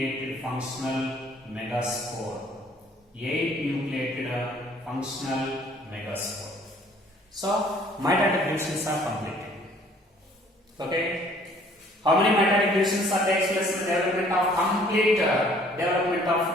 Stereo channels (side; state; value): both; normal; correlation 0.58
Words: functional megaspore. 8 nucleated functional megaspore. So, mitotic divisions are completed. Okay? How many mitotic divisions are takes place in the development of complete development of